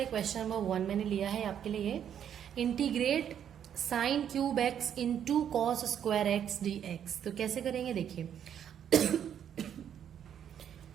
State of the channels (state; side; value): quieter; left; 9.2 dB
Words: क्वेश्चन नंबर 1 मैंने लिया है आपके लिए, ये integrate sine cube x into cos square x d x. तो कैसे करेंगे देखिए